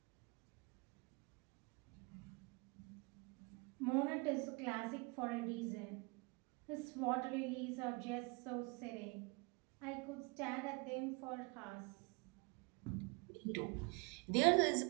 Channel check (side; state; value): left; quieter; 30.0 dB